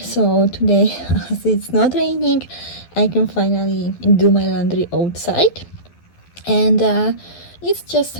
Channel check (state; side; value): late; right; 12 ms